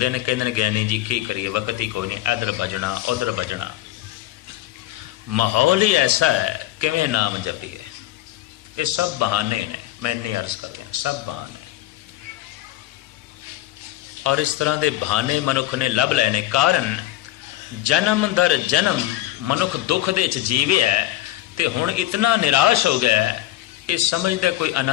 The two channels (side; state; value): right; quieter; 14.9 dB